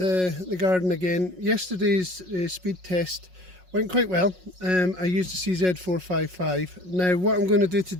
garden again. Yesterday's speed test went quite well. I used a CZ452. Now what I'm going to do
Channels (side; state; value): left; late; 5.5 ms